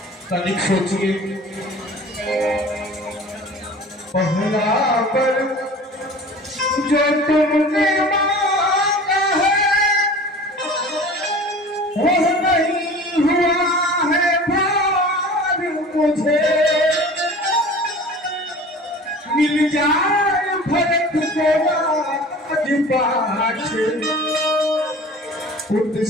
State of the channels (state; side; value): normal; both; correlation 0.41